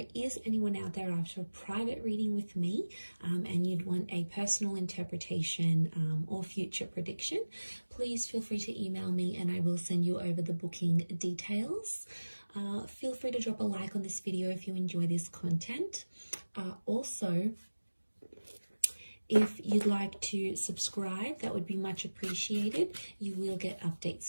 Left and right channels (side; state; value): both; inverted; correlation -1.00